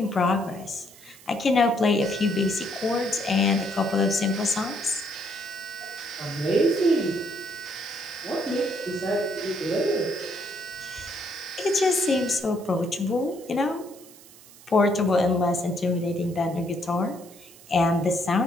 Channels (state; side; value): noise; right; hiss, 22 dB below the sound